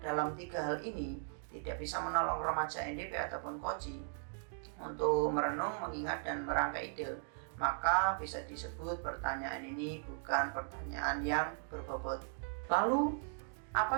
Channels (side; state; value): left; silent; digital silence